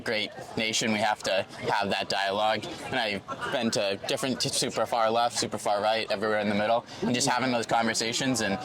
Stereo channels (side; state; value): both; identical; correlation 1.00